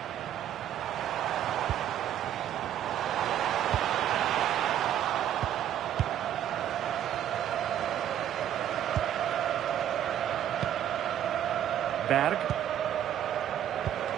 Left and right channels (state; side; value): quieter; left; 10.8 dB